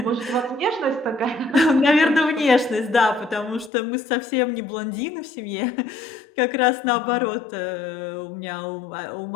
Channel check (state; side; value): drops out; right; at 3.7 s